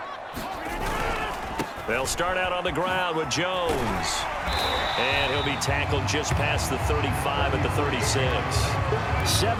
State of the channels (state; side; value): identical; both; correlation 1.00